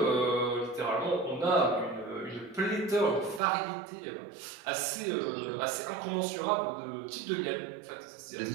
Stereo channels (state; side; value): drops out; left; at 3.4 s